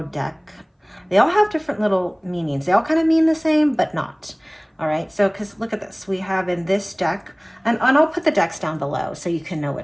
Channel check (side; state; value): both; identical; correlation 1.00